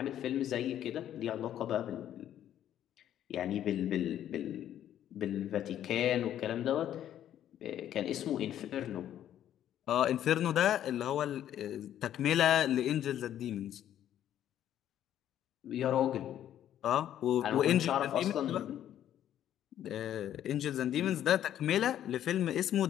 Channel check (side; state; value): right; quieter; 11.1 dB